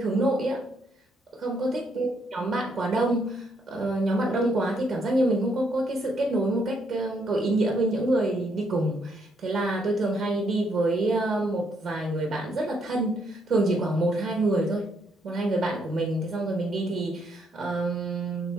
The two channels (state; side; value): normal; both; correlation 0.73